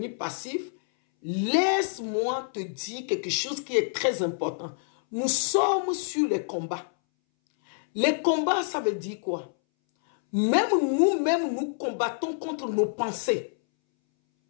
passifs, laisse-moi te dire quelque chose qui est très important. Nous sommes sur les combats. Les combats, ça veut dire quoi? Même nous-mêmes, nous combattons contre nos pensées.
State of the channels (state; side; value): silent; right; 60 dB below the other